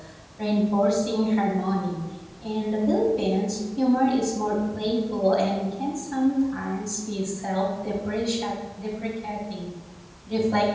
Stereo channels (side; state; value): both; identical; correlation 1.00